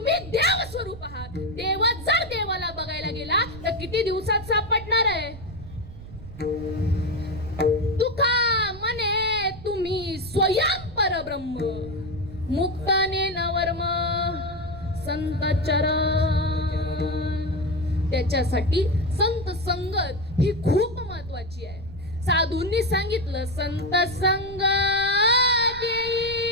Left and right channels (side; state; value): right; noise; rumble, 14 dB below the sound